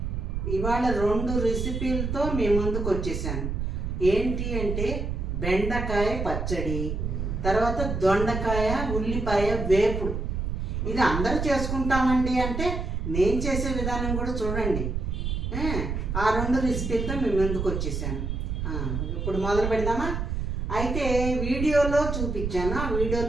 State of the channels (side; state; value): right; noise; rumble, 2 dB below the sound